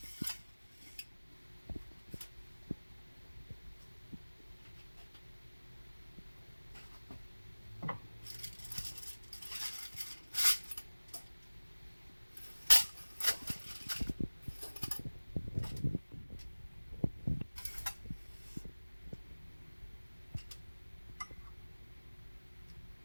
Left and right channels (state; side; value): inverted; both; correlation -1.00